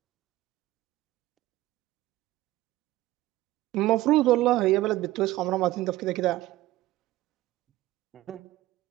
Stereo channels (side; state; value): left; quieter; 16.9 dB